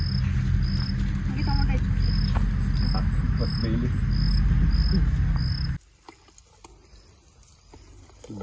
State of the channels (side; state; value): both; identical; correlation 1.00